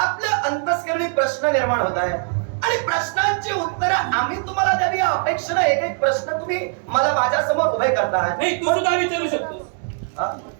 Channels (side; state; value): left; silent; 64 dB below the other